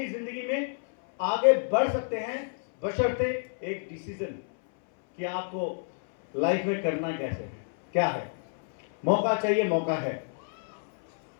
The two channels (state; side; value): silent; right; 59 dB below the other